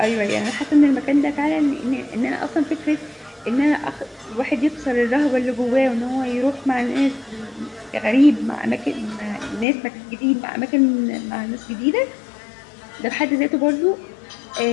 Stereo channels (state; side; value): drops out; right; at 9.7 s